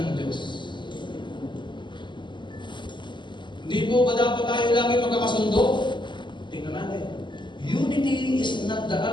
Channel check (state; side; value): late; right; 0.22 ms